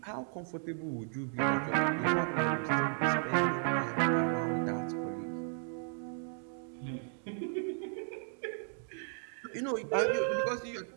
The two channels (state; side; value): silent; left; 55 dB below the other